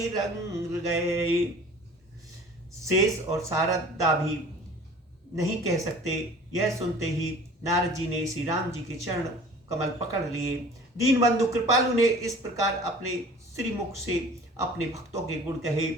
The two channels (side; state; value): both; normal; correlation 0.46